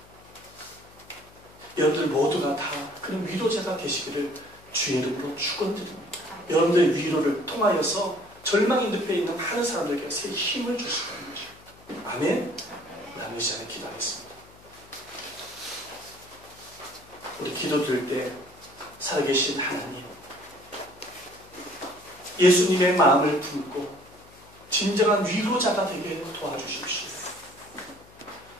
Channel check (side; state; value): left; noise; hum, 25 dB below the sound